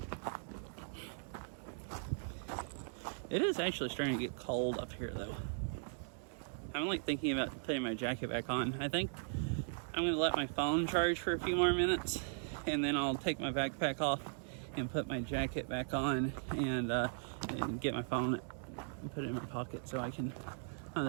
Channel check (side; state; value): left; silent; digital silence